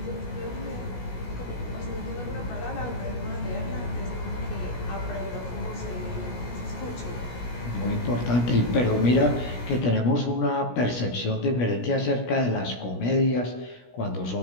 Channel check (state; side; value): late; right; 17 ms